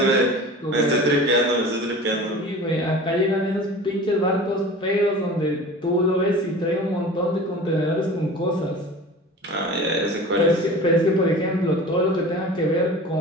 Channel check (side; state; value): both; normal; correlation 0.38